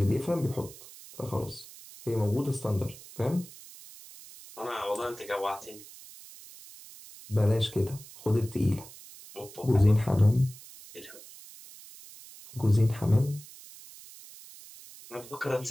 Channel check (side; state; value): right; noise; hiss, 18 dB below the sound